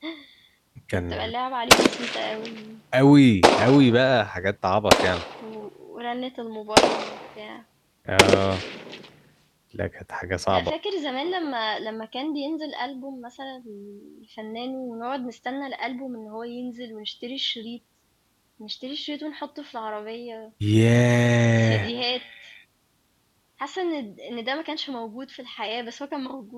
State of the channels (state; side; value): identical; both; correlation 1.00